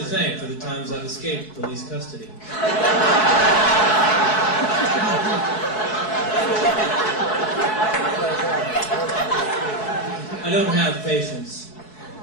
thank for the times I've escaped police custody. I don't have patience.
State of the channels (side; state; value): right; late; 4.7 ms